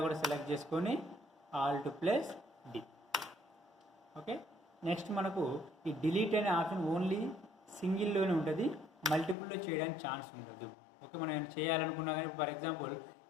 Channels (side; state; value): right; drops out; at 9.3 s